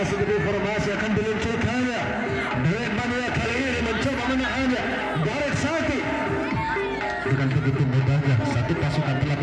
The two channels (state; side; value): identical; both; correlation 1.00